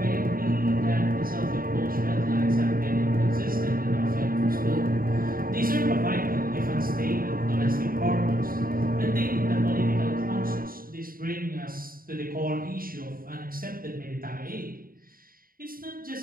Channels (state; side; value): late; left; 0.42 ms